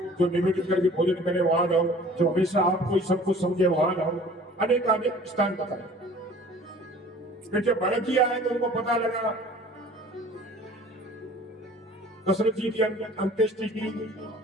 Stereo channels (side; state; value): both; normal; correlation 0.48